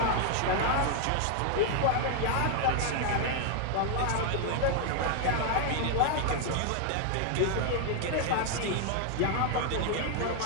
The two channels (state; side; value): different; both; correlation 0.00